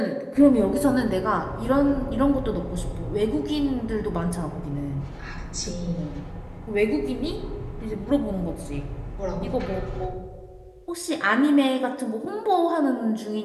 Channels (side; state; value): both; identical; correlation 1.00